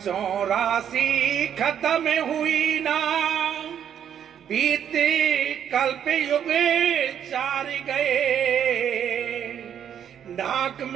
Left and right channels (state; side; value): quieter; left; 9.0 dB